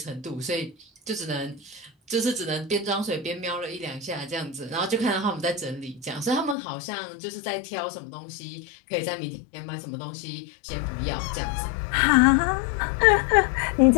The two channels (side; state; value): right; drops out; at 6.6 s